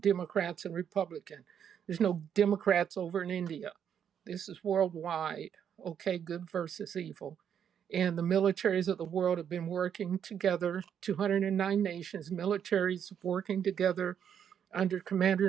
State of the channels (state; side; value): quieter; left; 8.5 dB